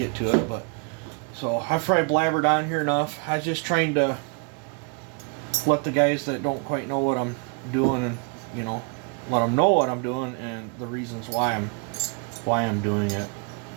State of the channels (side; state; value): left; quieter; 33.2 dB